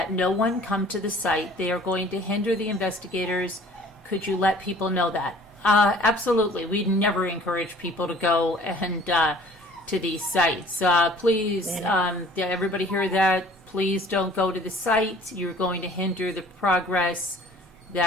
no one come to the site. They are going to hinder the investigators. Could you let people know that? Absolutely. We never encourage people to go and to these sites. Please, everybody hear that? Please don't go to the site. You're going to hinder the progress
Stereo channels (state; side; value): normal; both; correlation 0.51